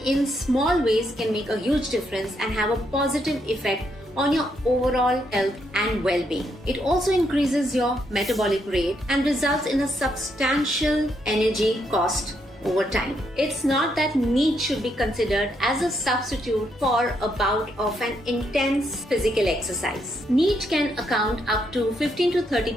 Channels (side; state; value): both; normal; correlation 0.77